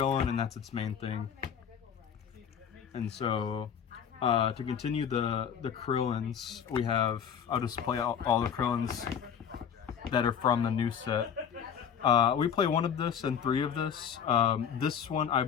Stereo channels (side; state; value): right; quieter; 8.1 dB